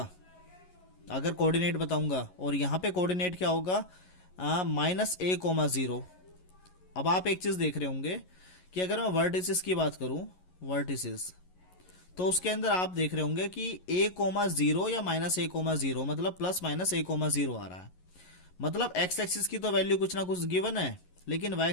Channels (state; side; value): late; right; 11 ms